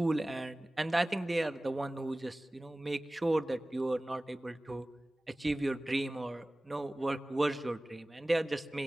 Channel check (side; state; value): both; normal; correlation 0.98